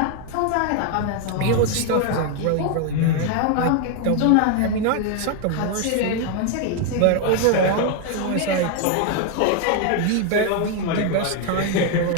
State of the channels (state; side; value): different; both; correlation 0.01